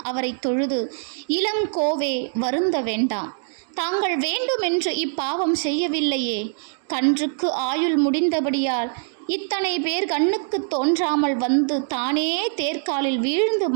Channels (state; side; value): silent; left; digital silence